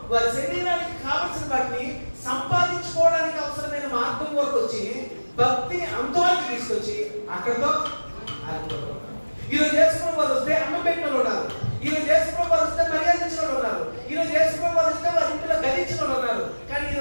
వారి శరీరానికి కావలసిన వాటిని సంపాదించుకోవడానికి అవసరమైన మార్గం వరకు వచ్చి భక్తిని అంతవరకు తీసుకొచ్చి అక్కడితో ఆగిపోతారు. ఈరోజు యేసు ప్రభువు వారు వస్తే అన్నం పెట్టిన వాళ్ళు ఉన్నారు, ఈరోజు యేసు ప్రభువు వారు వస్తే మర్యాదించిన వాళ్ళు ఉన్నారు, ఈరోజు యేసు ప్రభువు వారు వస్తే వారి ఇంట్లో గదించిన వాళ్ళు ఉన్నారు. కానీ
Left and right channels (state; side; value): inverted; both; correlation -1.00